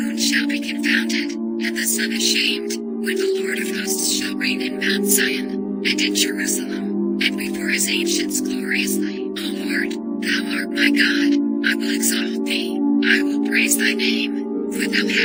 shall be confounded, and the sun ashamed, when the Lord of hosts shall reign in Mount Zion, and in Jerusalem, and before his ancients gloriously. O Lord, thou art my God, I will exalt thee, I will praise thy name, for thou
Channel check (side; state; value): both; identical; correlation 1.00